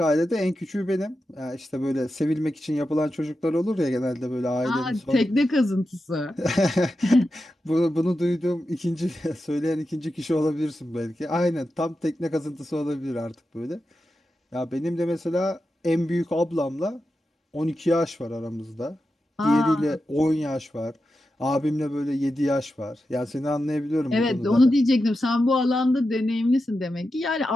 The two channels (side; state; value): both; normal; correlation 0.90